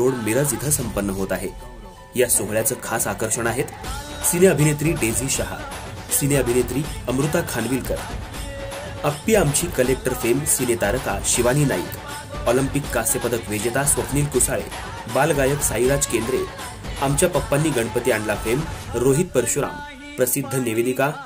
मिरज इथं संपन्न होत आहे। या सोहळ्याचं खास आकर्षण आहेत सिने अभिनेत्री डेझी शहा, सिने अभिनेत्री अमृता खानविलकर, अप्पी आमची कलेक्टर फेम सिने तारका शिवानी नाईक, ऑलिम्पिक कांस्य पदक विजेता स्वप्नील कुसाळे, बालगायक साईराज केंद्रे, आमच्या पप्पांनी गणपती आणला फेम रोहित परशुराम, प्रसिद्ध निवेदिका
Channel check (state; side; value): identical; both; correlation 1.00